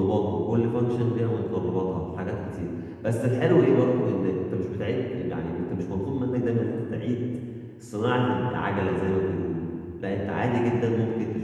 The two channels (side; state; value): both; identical; correlation 1.00